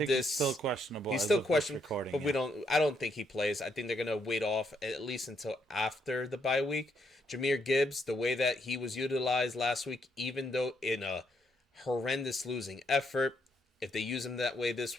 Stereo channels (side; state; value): both; normal; correlation 0.75